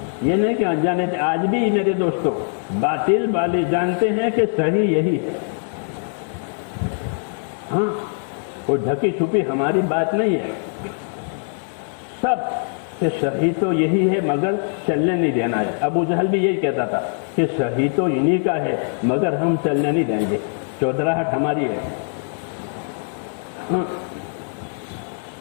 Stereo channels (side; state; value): right; silent; 58 dB below the other